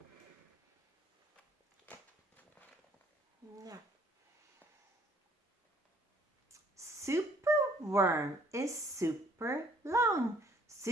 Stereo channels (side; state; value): both; normal; correlation 0.61